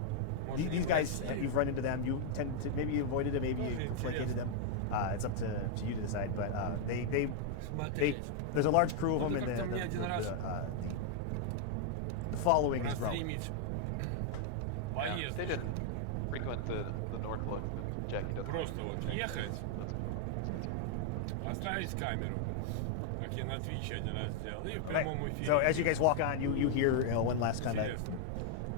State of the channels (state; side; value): different; both; correlation 0.00